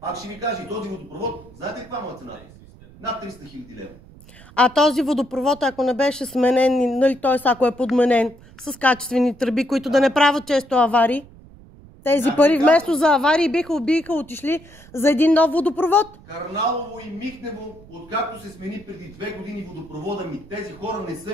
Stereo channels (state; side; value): noise; right; rumble, 22 dB below the sound